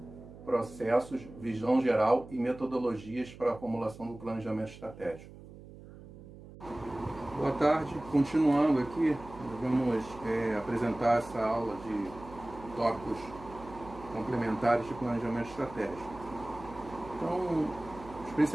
processos, visão geral e metodologias para a formulação do planejamento estratégico. Boa tarde. Continuando aqui, nós vamos apresentar essa aula de tópicos complementares de planejamento estratégico. Então, os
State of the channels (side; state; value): right; noise; hum, 17 dB below the sound